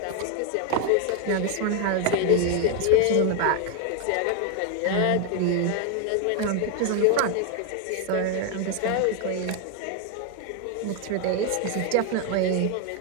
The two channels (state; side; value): different; both; correlation 0.01